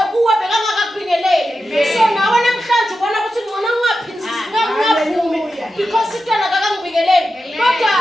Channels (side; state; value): both; normal; correlation 0.90